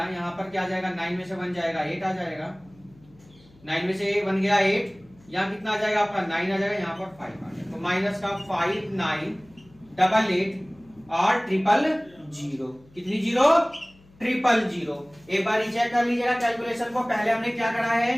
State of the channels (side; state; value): left; noise; hum, 28 dB below the sound